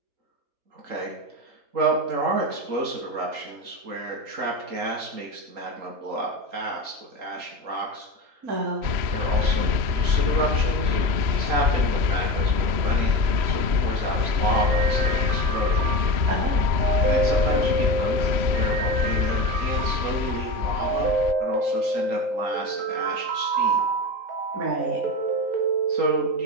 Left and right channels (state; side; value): late; left; 3.1 ms